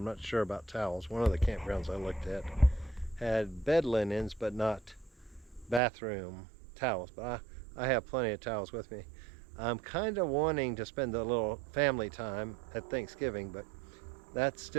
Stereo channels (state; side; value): drops out; left; at 5.8 s